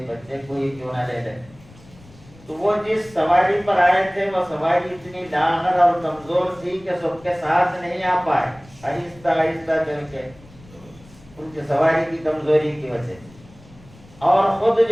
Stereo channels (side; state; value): left; noise; rumble, 24 dB below the sound